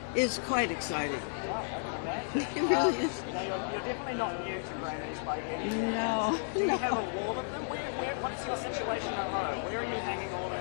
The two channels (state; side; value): silent; right; 56 dB below the other